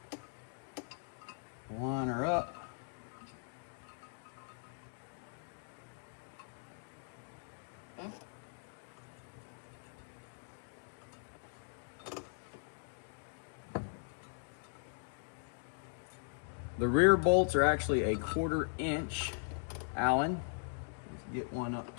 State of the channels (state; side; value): silent; right; digital silence